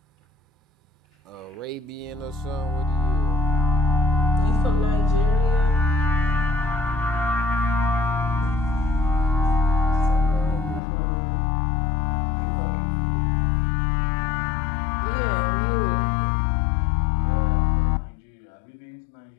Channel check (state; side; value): drops out; right; at 10.8 s